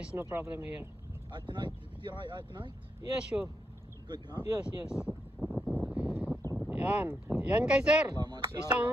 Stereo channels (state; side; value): normal; both; correlation 0.82